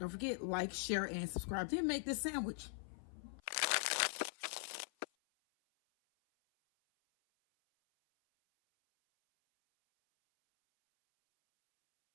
forget, like, share, and subscribe. Then make this sandwich.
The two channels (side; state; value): right; silent; 50 dB below the other